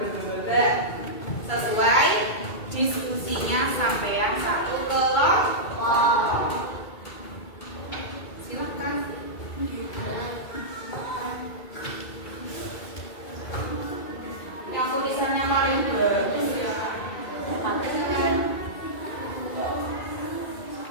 Sesuai diskusinya sampean satu kelompok. Silakan. Yang tulisannya paling bagus ya.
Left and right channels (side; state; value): right; late; 2.3 ms